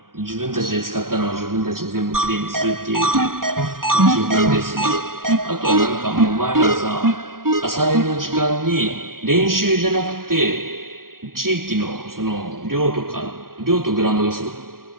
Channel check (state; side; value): late; left; 0.92 ms